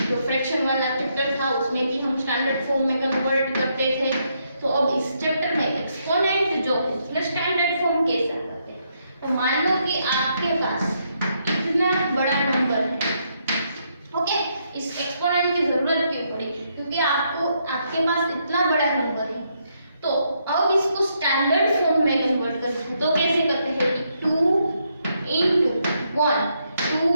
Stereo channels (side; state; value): both; inverted; correlation -0.77